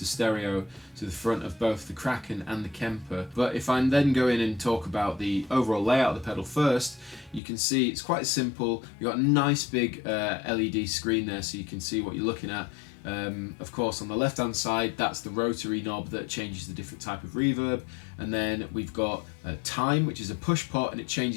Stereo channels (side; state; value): right; drops out; at 7.4 s